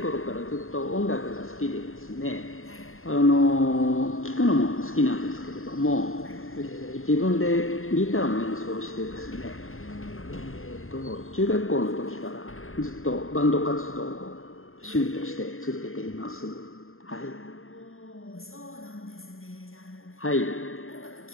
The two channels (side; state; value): right; late; 0.61 ms